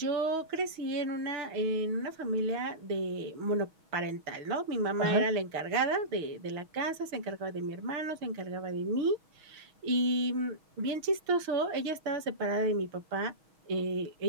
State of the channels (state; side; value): late; left; 6.3 ms